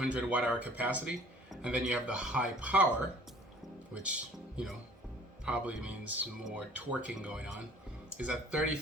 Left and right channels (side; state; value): both; normal; correlation 0.51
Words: watt-hour capacity. And then you have the high power, which, probably means more torquing going on, is at